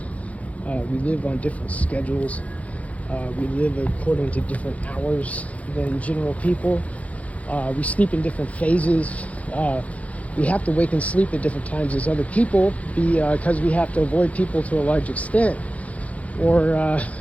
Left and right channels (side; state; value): right; late; 0.067 ms